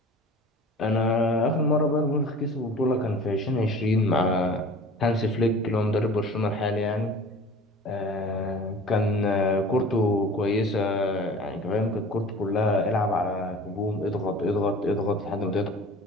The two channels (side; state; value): both; normal; correlation 0.42